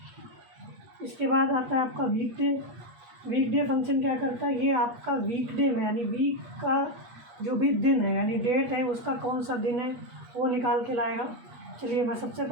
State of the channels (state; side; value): late; left; 8.4 ms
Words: इसके बाद आता है आपका weekday. Weekday function क्या करता है, ये आपका वीक डे में, यानी वीक का जो भी दिन है, यानी डेट है, उसका कौन सा दिन है वो निकाल के लाएगा। चलिए मैं सबसे